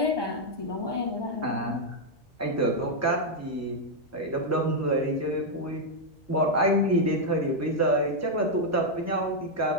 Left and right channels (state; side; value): normal; both; correlation -0.01